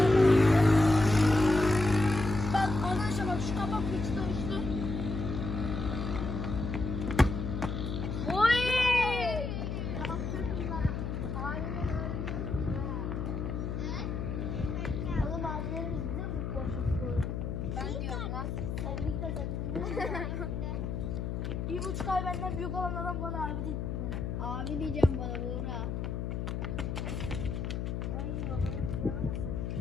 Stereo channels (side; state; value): left; noise; hum, 3 dB below the sound